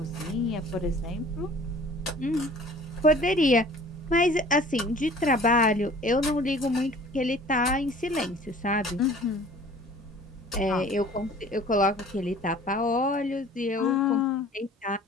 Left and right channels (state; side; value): normal; both; correlation 0.48